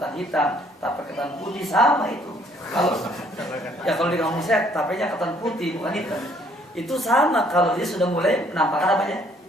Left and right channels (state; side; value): normal; both; correlation 0.63